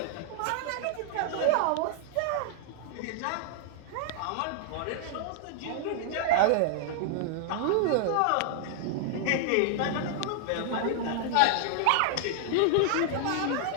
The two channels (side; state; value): both; different; correlation -0.01